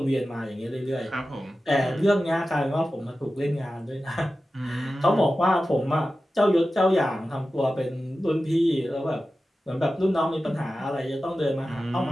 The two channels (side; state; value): both; normal; correlation 0.94